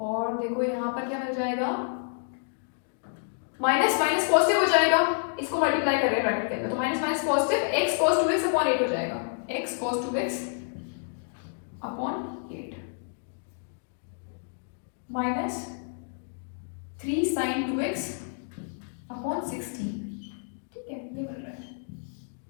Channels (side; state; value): right; silent; digital silence